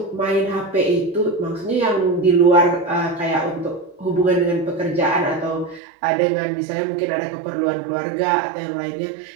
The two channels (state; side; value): drops out; left; at 5.8 s